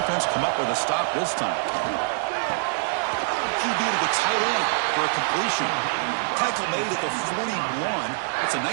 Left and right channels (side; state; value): left; silent; 62 dB below the other